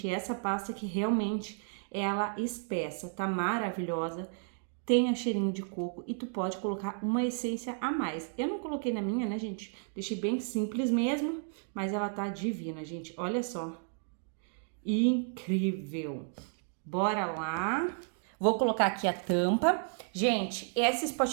E essa pasta que realmente ela espessa, tá maravilhosa, tem a cheirinho de coco e tu pode colocar uma essência a mais. Eu não coloquei na minha, né, gente? Deixei bem simples mesmo, mas ela tá divina, gente. Olha só. Incrível. Bora lá. Vou colocar aqui a tampa. Gente, esses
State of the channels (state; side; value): silent; left; 56 dB below the other